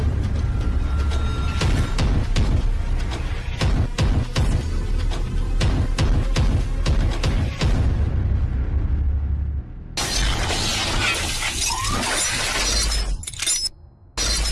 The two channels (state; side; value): identical; both; correlation 1.00